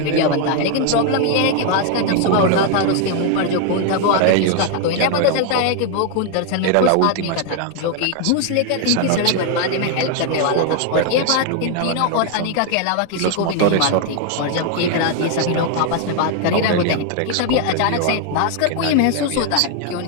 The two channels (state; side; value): different; both; correlation 0.00